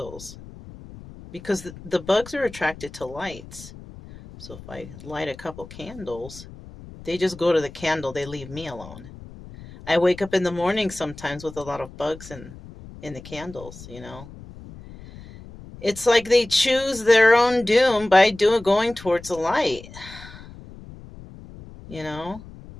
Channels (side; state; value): left; noise; rumble, 17 dB below the sound